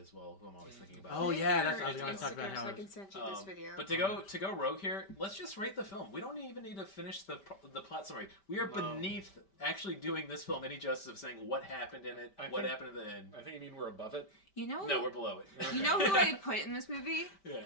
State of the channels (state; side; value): late; right; 5.1 ms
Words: well, who I'm always thinking about. Oh yeah, that's what I was going to talk about. So I can send you this video. But to go rogue here, let's just rate the film. We don't even need to finish the plot summary. We are beneath actually doing this film any justice of saying what happened in it, what happened at the end. I think you mean we're above it. No, we're below it. You know who I put in this movie?